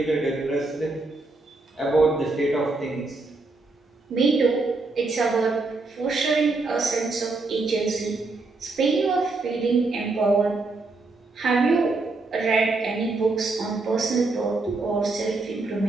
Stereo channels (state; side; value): quieter; left; 3.5 dB